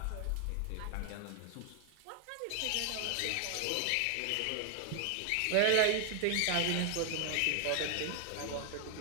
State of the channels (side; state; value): both; different; correlation 0.00